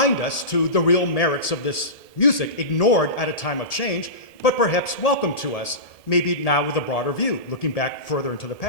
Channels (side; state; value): right; late; 1.7 ms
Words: us to the real merits of this music, ignored at a time of change, but perhaps welcome to us, maybe now with a broader view, looking back further into the